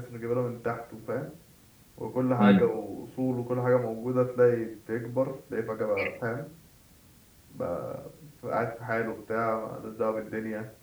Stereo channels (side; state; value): both; identical; correlation 1.00